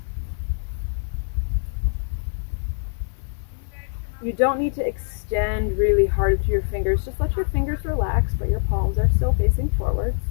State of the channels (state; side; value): silent; right; 63 dB below the other